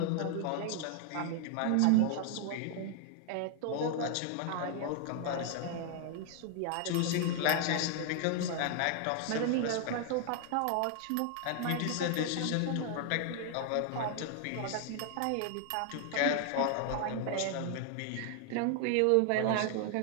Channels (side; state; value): both; different; correlation 0.00